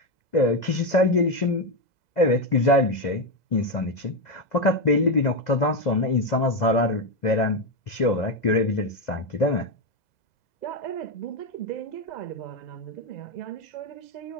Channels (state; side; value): late; right; 2.0 ms